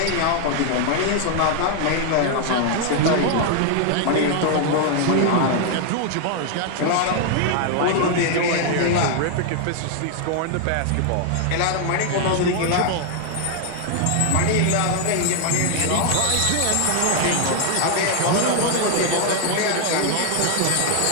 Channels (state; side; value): different; both; correlation 0.00